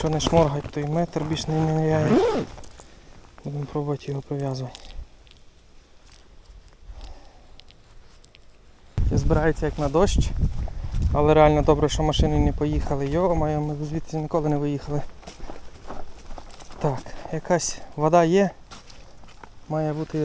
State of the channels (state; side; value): identical; both; correlation 1.00